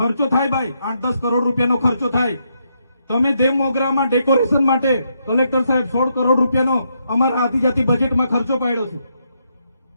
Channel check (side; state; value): both; inverted; correlation -0.78